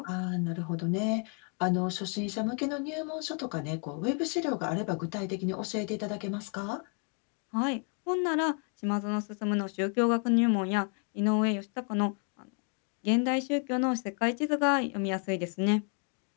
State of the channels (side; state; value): right; quieter; 40.0 dB